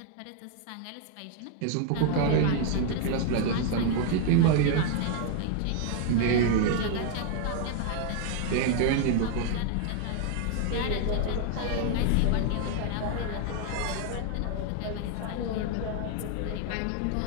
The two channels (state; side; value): different; both; correlation 0.00